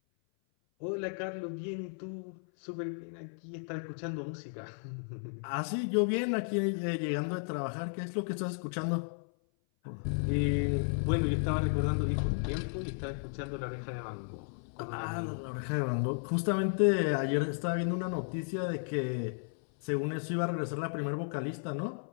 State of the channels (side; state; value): right; silent; 55 dB below the other